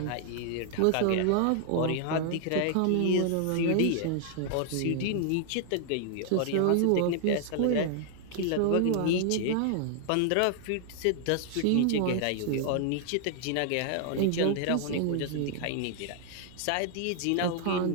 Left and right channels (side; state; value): both; different; correlation 0.00